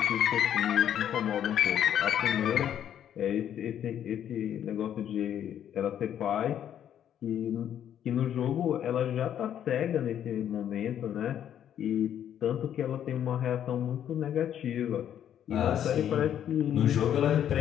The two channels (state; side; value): quieter; right; 10.0 dB